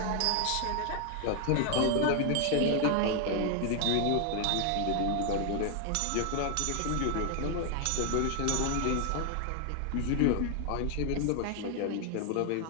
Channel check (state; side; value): different; both; correlation 0.00